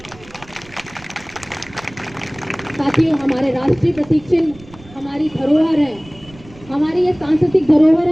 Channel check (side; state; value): right; noise; rumble, 22 dB below the sound